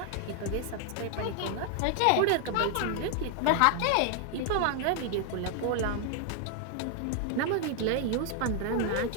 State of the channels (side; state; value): both; different; correlation 0.00